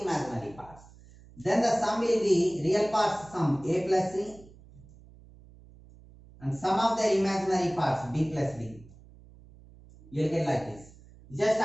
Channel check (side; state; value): right; noise; hum, 23 dB below the sound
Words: imaginary parts. Then the sum will be real parts sum A plus C and sum of their imaginary parts B plus D. You will get like this. Just